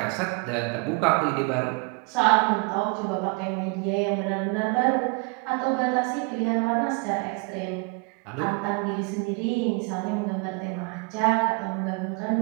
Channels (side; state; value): left; quieter; 31.2 dB